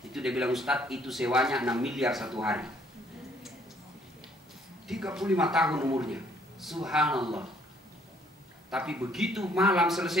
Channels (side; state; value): both; normal; correlation 0.64